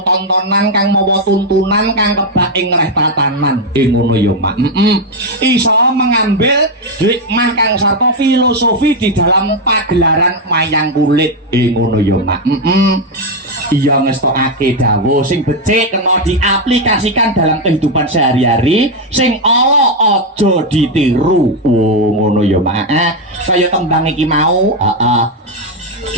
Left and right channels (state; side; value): normal; both; correlation 0.04